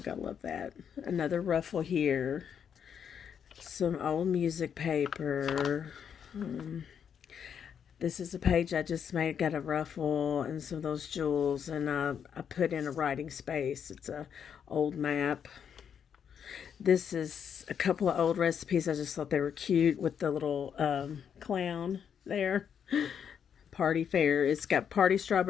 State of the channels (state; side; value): quieter; right; 7.8 dB